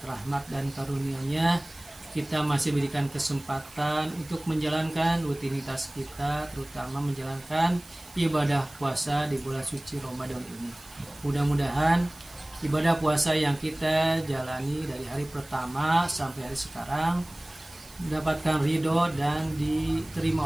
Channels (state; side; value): noise; right; hiss, 22 dB below the sound